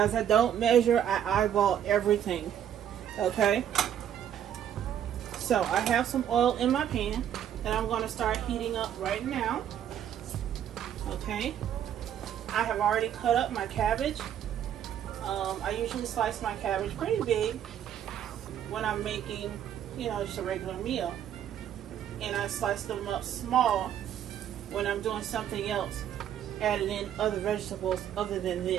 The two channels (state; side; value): quieter; left; 10.0 dB